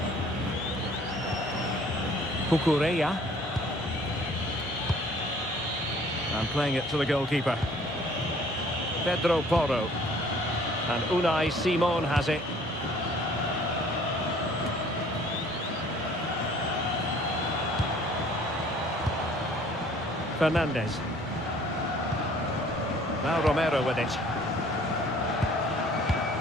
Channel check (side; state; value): both; normal; correlation 0.55